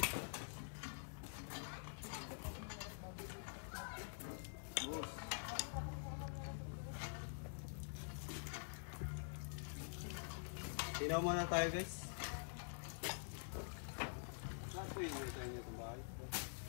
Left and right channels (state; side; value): silent; right; digital silence